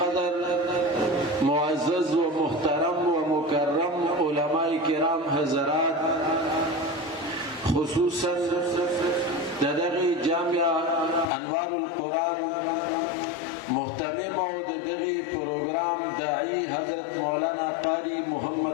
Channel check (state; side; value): drops out; right; at 11.3 s